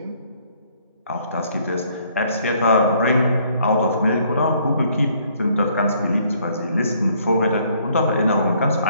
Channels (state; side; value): inverted; both; correlation -0.65